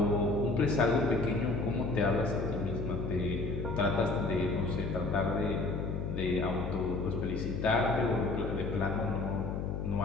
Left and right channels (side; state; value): left; noise; hum, 3 dB below the sound